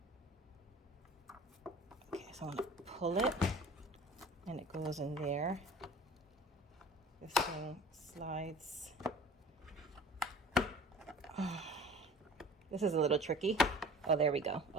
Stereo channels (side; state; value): both; normal; correlation 0.44